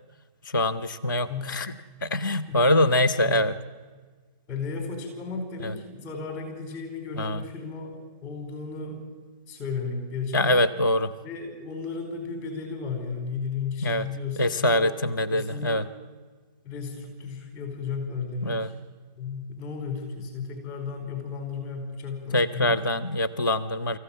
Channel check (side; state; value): both; inverted; correlation -0.45